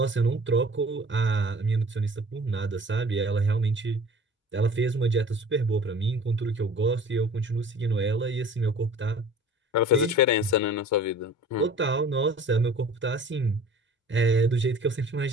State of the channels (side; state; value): both; normal; correlation 0.45